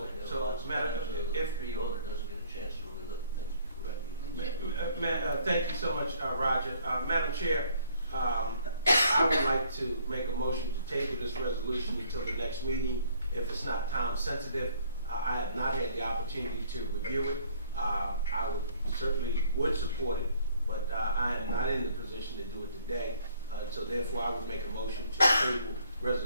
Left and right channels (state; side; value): inverted; both; correlation -0.61